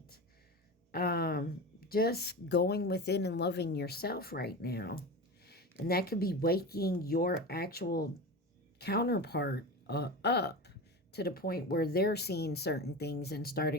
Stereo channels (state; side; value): normal; both; correlation 0.27